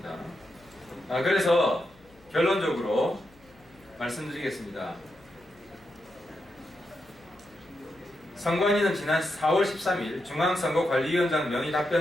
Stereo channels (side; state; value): left; noise; hum, 27 dB below the sound